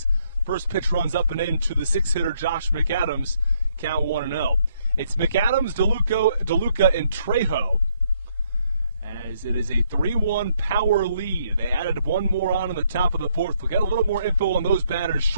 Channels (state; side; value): inverted; both; correlation -0.71